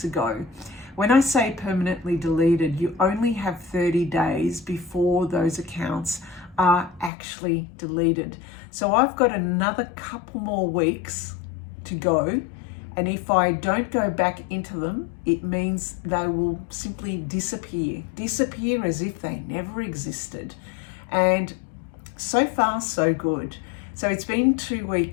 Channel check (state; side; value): drops out; right; at 7.1 s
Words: ago. When I say permanently deleted, you only have 30 days before those accounts are actually deleted. So I've got another couple more weeks to go. And if I don't go back into them, it means they will simply disappear as if they never existed. And so far, so good. So it's been 2